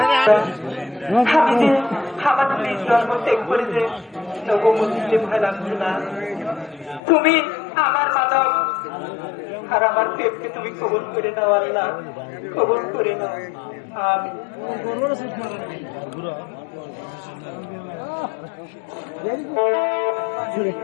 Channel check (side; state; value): right; drops out; at 7.0 s